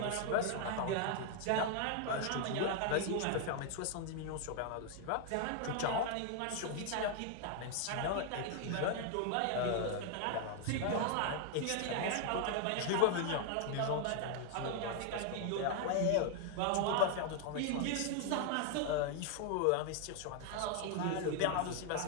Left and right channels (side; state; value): both; different; correlation 0.00